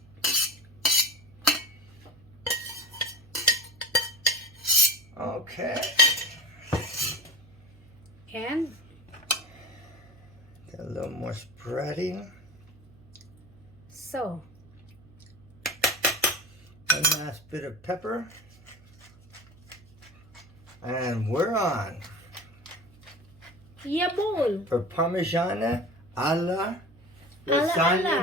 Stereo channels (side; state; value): right; noise; hum, 25 dB below the sound